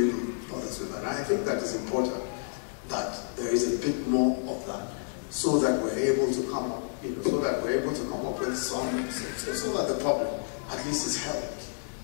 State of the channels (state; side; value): silent; right; digital silence